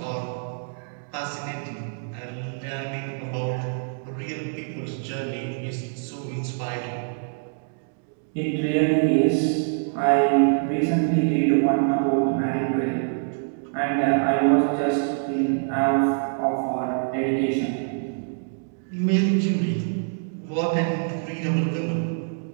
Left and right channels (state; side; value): silent; left; digital silence